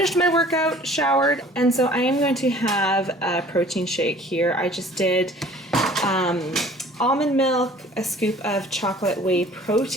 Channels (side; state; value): both; normal; correlation 0.50